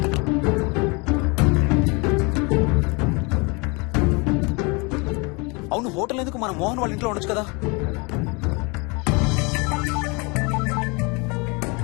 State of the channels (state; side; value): quieter; right; 29.4 dB